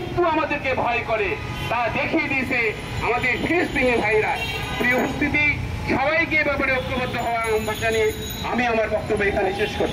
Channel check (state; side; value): identical; both; correlation 1.00